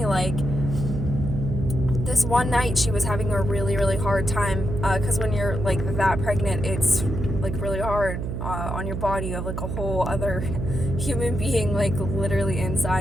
this one night she was having a really, really hard time, because when you're that pregnant, it's really hard on your body. You have a whole other human being literally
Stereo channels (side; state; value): right; noise; hum, 4 dB below the sound